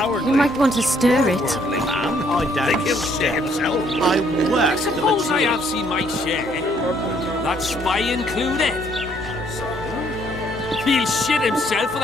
You might want to stir it. I don't he'll shit himself. I work. Suppose I have seen my share. That spy included. He'll shit himself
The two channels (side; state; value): both; normal; correlation 0.67